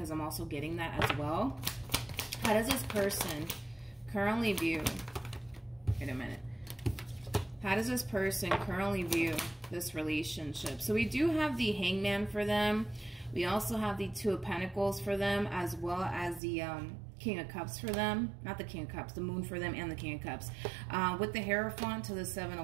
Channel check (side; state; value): left; drops out; at 16.4 s